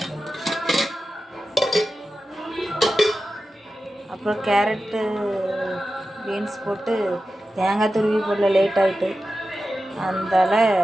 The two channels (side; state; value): both; normal; correlation 0.93